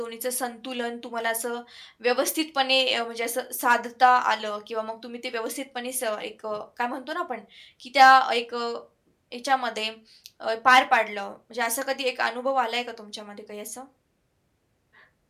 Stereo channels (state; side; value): identical; both; correlation 1.00